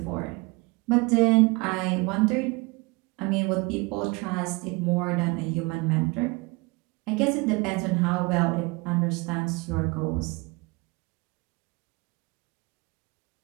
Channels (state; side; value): quieter; left; 26.4 dB